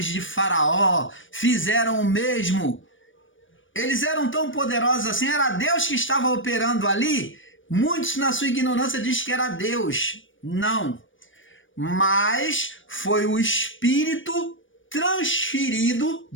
de Faraó fizeram o mesmo? Eles eram tão poderosos assim? Era Deus que estava operando ali? Muitos, na sua ignorância, dizem que era Deus. Não. Mas foi o Espírito transferido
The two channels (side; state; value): right; late; 0.56 ms